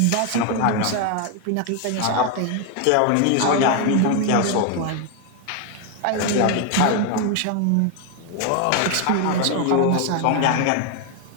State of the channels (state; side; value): different; both; correlation 0.01